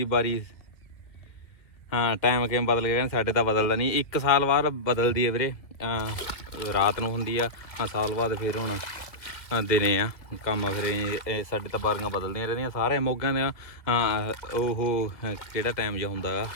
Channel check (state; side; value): late; right; 2.2 ms